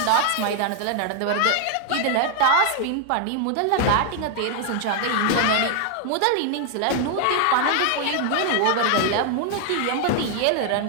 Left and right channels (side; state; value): both; different; correlation 0.00